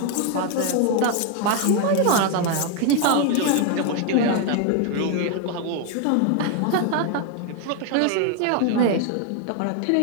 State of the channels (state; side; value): different; both; correlation 0.01